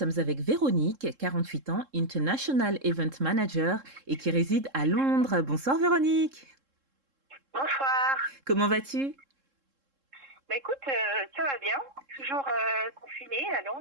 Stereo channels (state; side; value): late; left; 3.7 ms